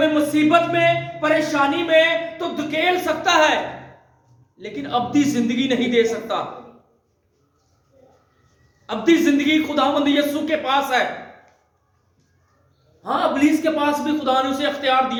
मुसीबत में, परेशानी में तो धकेल सकता है, लेकिन अब्दी जिंदगी नहीं दे सकता। अब्दी जिंदगी खुदावंद यीशु के पास है। हां, इब्लीस के पास भी खुदा ने उसे अख्तियार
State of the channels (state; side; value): identical; both; correlation 1.00